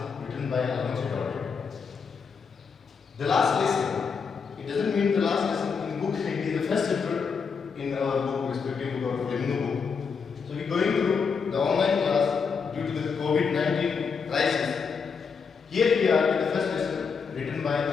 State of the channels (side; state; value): right; quieter; 5.7 dB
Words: written by Alonso Daudet. The last lesson. It doesn't mean the last lesson in book. It is the first chapter in our book, respective book of Flamingo book. So we're going through the online class due to the COVID-19 crisis. Here we are with the first lesson written by